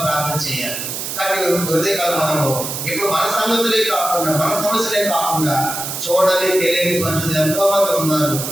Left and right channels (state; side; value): noise; right; hiss, 5 dB below the sound